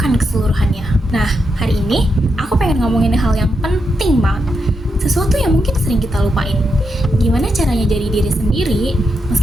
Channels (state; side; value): normal; both; correlation 0.84